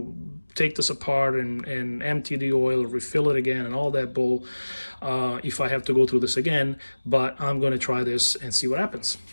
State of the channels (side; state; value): both; inverted; correlation -1.00